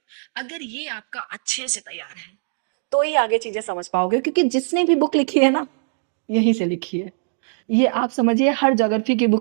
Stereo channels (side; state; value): left; silent; digital silence